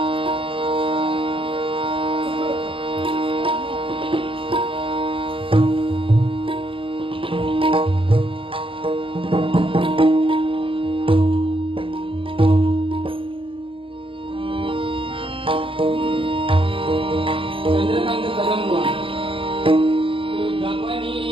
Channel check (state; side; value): late; left; 0.25 ms